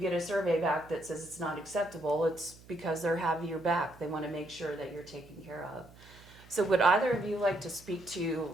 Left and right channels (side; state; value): right; noise; hum, 22 dB below the sound